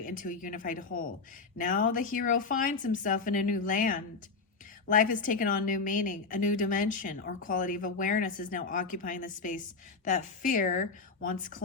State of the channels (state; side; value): quieter; right; 4.5 dB